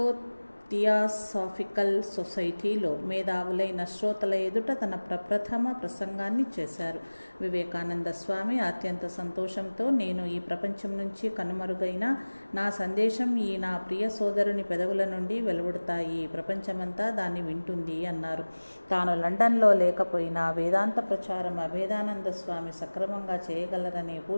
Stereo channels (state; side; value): inverted; both; correlation -1.00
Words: థియాసాఫికల్ సొసైటీలో మేధావులైన శ్రోతల ఎదుట తన ప్రప్రథమ ప్రసంగాన్ని చేశారు. వివేకానంద స్వామి అత్యంత సంతోషంతో, నేను ఈ ప్రపంచం నుంచి కనుమరుగైన నా సందేశం ఈ నా ప్రియ సోదరుని పెదవుల నుండి వెలువడతాయి, ప్రపంచమంతా దాన్ని వింటుంది అన్నారు. తాను లండన్లో లేకపోయినా వేదాంత ప్రచారం అభేదానంద స్వామి సక్రమంగా చేయగలరనే